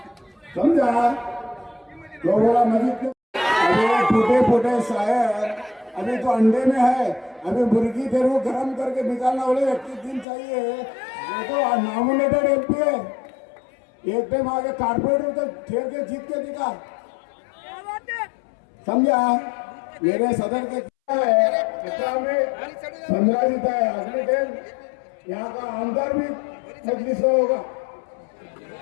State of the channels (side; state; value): right; drops out; at 10.2 s